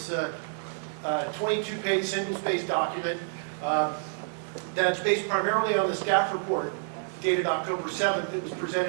a 22-page single-spaced document that's based primarily on the staff report dated October 7th that was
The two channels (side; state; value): left; silent; digital silence